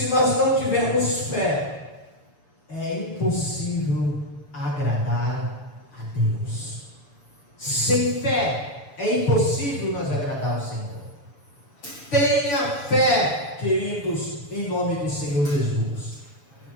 nós não tivermos fé, é impossível agradar a Deus. Sem fé, é impossível nós agradar ao Senhor. Tenha fé, queridos, em nome do Senhor Jesus.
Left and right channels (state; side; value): late; right; 6.9 ms